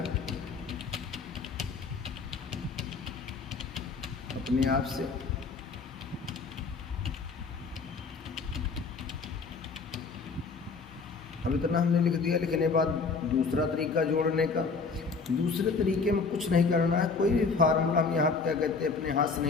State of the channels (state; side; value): quieter; right; 4.6 dB